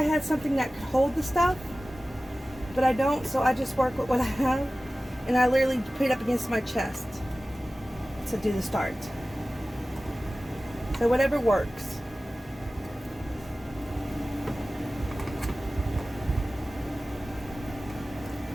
had something that could hold the stuff, but I don't, so I just work with what I have, and I literally put it up against my chest to do the start. So whatever works.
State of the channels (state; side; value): normal; both; correlation 0.96